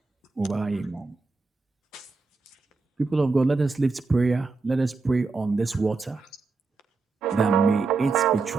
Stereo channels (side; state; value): left; quieter; 4.0 dB